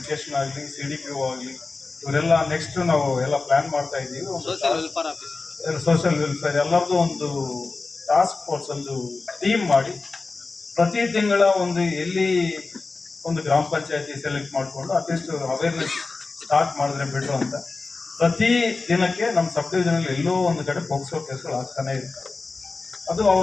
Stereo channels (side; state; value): right; quieter; 3.9 dB